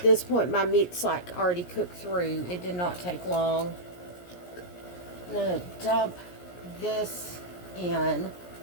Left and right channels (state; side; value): late; right; 17 ms